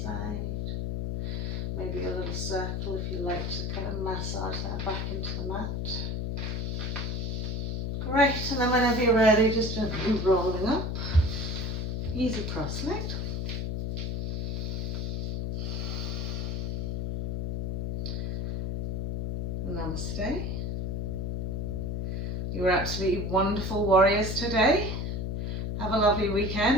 side. Maybe a little circle if you like to kind of massage that back into the mat. Great, and then whenever you're ready, just gently rolling up. Easy cross-legged. Namaste. You were absolutely wonderful warriors today. Have a lovely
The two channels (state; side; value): noise; left; hum, 1 dB below the sound